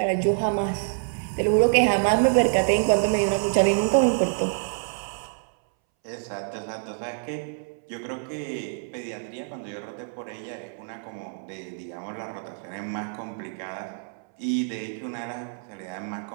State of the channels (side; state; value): left; silent; 61 dB below the other